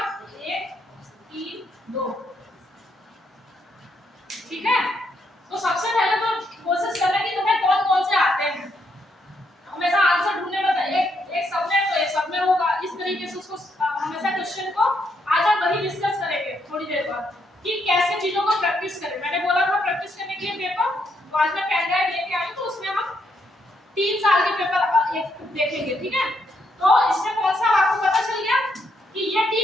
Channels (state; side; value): normal; both; correlation 0.76